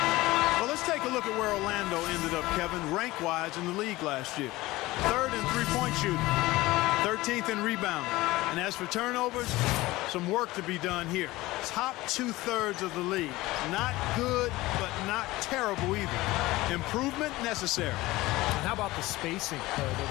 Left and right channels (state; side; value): quieter; right; 19.0 dB